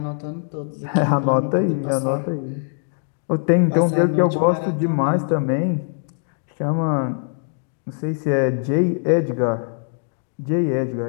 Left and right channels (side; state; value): right; silent; digital silence